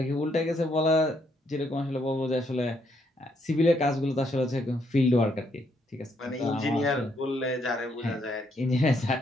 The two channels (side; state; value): both; normal; correlation 0.73